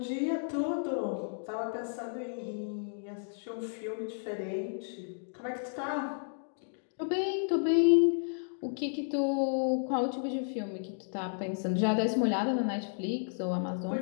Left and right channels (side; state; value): right; silent; digital silence